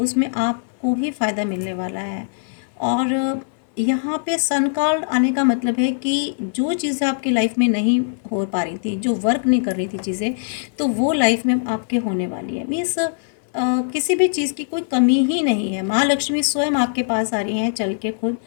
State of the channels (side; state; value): right; silent; 63 dB below the other